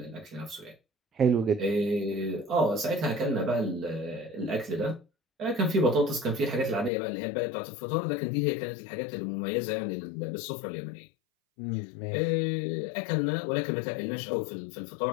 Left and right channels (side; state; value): right; drops out; at 6.9 s